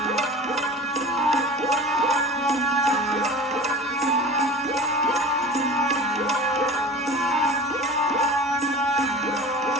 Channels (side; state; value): both; normal; correlation 0.37